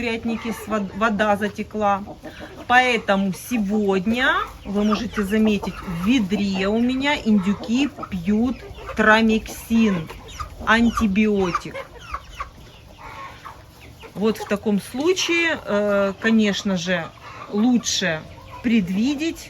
вода затекла. Поэтому сегодня, вы можете заметить, в ведре у меня индюки пьют трамексин, антибиотик. Вот в таком случае, конечно же, лучше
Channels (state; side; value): identical; both; correlation 1.00